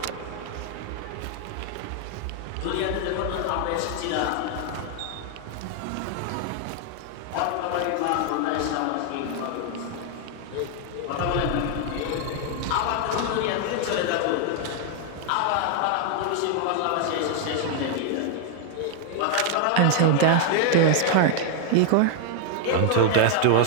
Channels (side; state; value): both; different; correlation 0.00